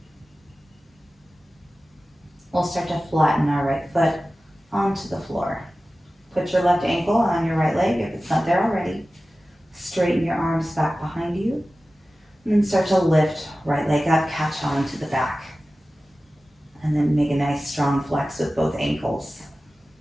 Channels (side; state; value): both; normal; correlation 0.96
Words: We'll start to flatten our right foot onto the floor. Put your left ankle on your right leg if it's not there already. Straighten your arms back behind you. And then start to lift right leg up, catch on to the back. And then make a nice strong flex with both ankles.